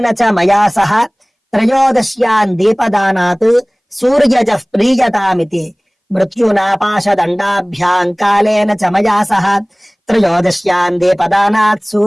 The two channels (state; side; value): identical; both; correlation 1.00